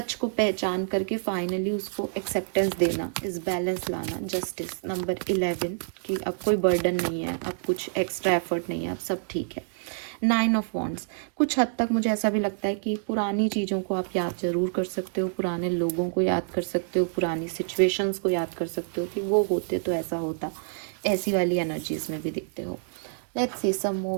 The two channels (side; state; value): left; silent; digital silence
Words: को पहचान करके फाइनली उसको एक्सेप्टेंस देना, इस बैलेंस लाना। जस्टिस नंबर 11 कि अब कोई बर्डन नहीं है, अब कुछ एक्स्ट्रा एफर्ट नहीं है, अब सब ठीक है। 9 ऑफ वॉन्ड्स, कुछ हद तक मुझे ऐसा भी लगता है कि पुरानी चीज़ों को आप याद ज़रूर कर सकते हो, पुराने लोगों को याद कर सकते हो, पुरानी सिचुएशंस को याद कर सकते हो कि वो होते तो ऐसा होता, ऐसी वाली एनर्जीज में भी दिखते हो। Let's see some